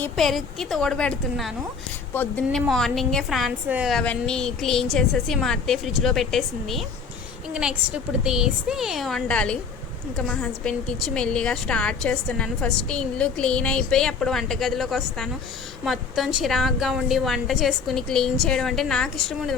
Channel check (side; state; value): right; quieter; 5.4 dB